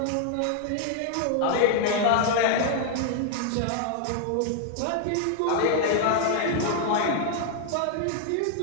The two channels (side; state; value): both; different; correlation 0.00